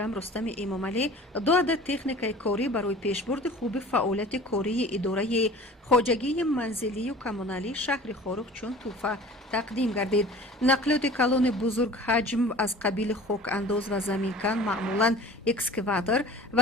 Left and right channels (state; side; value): normal; both; correlation 0.43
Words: رستم امامعلی 2 عدد تکنیکای کاری برای پیشبرد خوب فعالیت کاری اداره خواجگی منزلی و کمونالی شهر خاروق چون توفه تقدیم گردید. نقلیات کلان بزرگ حجم از قبیل خاک انداز و زمینکن معمولا اکسکواتور